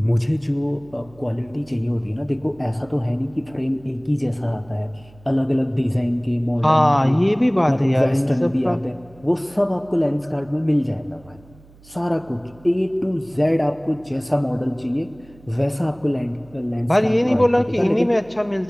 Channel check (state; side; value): noise; right; hum, 25 dB below the sound